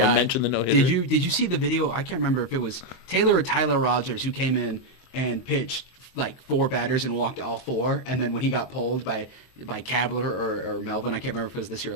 I mentioned the no-hitter. Did you see the video? I can't remember if it was Taylor or Tyler Rogers who came in and pitched like 4 batters and walked all 4, and then when he got pulled by Kabler or Melvin, I can't remember if it was this year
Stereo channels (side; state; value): right; late; 23 ms